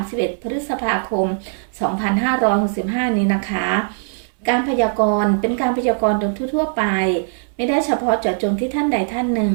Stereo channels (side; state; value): left; silent; digital silence